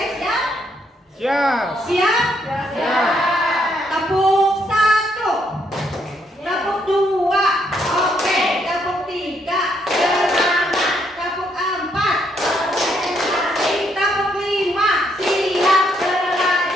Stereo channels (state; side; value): normal; both; correlation 0.73